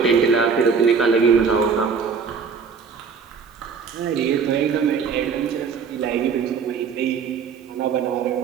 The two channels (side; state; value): left; quieter; 5.9 dB